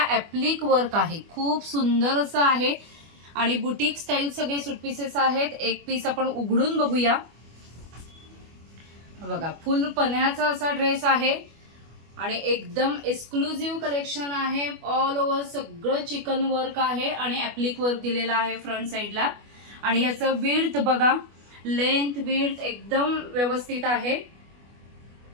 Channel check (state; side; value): late; left; 25 ms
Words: ऍप्लिक वर्क आहे। खूप सुंदर असं आहे आणि बुटीक स्टाईल सगळे सूट पीसेस आहेत। एक पीस आपण उघडून बघूया। बघा, फुल पन्ह्याचा असा ड्रेस आहे आणि एकदम एक्सक्लुझिव्ह कलेक्शन आहे। ऑल ओव्हर सगळं चिकन वर्क आहे आणि ऍप्लिक वर्क दिलेला आहे फ्रंट साइडला। आणि याचं विड्थ बघा, लेंथ विड्थ एकदम व्यवस्थित आहे।